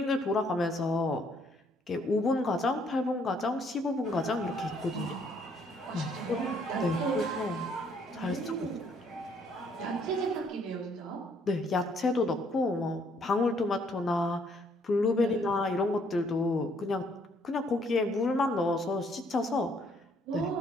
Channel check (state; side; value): normal; both; correlation 0.66